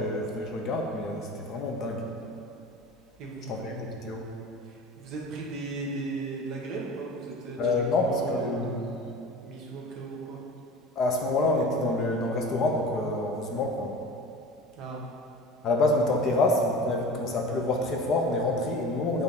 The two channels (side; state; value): both; normal; correlation 0.36